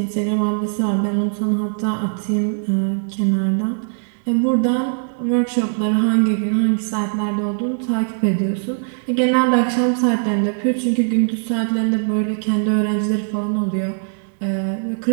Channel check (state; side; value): silent; left; digital silence